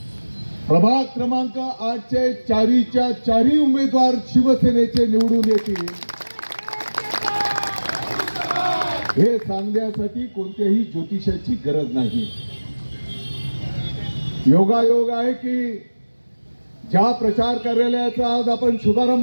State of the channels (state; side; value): inverted; both; correlation -1.00